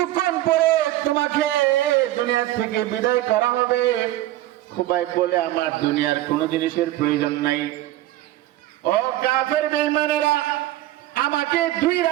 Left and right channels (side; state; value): left; quieter; 15.1 dB